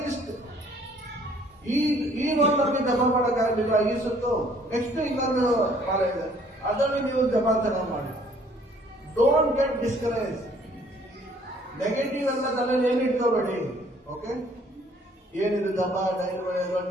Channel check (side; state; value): both; normal; correlation 0.60